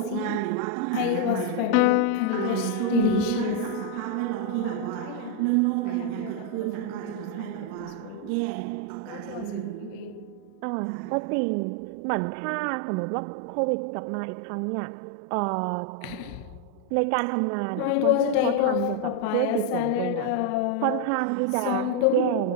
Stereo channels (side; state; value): both; different; correlation 0.01